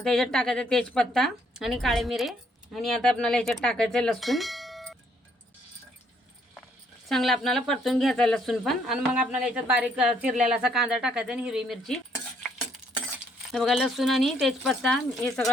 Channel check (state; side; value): normal; both; correlation 0.68